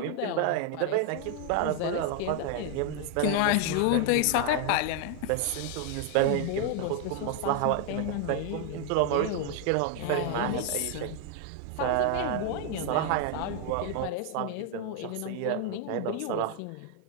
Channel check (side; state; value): both; different; correlation 0.00